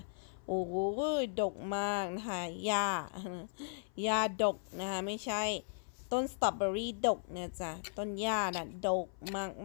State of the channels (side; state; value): right; silent; 53 dB below the other